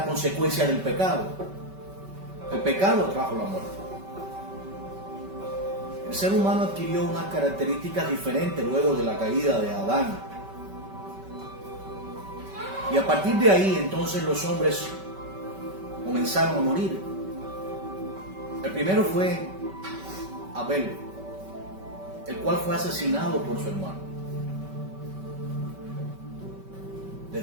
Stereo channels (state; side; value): late; left; 5.2 ms